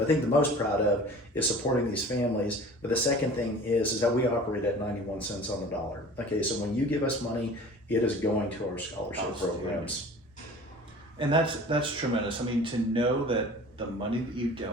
I think the most proud of, is supporting these families. But the second thing is that we operate at 91 cents on the dollar. Okay, so when you give us money, it is going to our scholarship programs. And that's tremendous. I mean, to know that the money that you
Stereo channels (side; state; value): both; normal; correlation 0.43